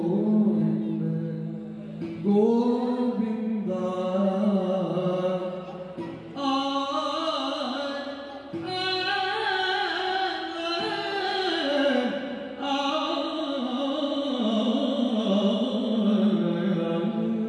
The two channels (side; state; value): both; identical; correlation 1.00